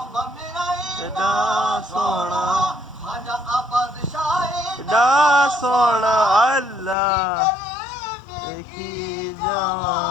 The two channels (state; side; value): drops out; right; at 7.0 s